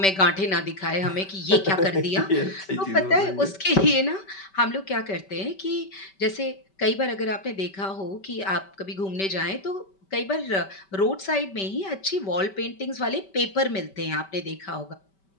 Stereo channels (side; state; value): right; late; 5.2 ms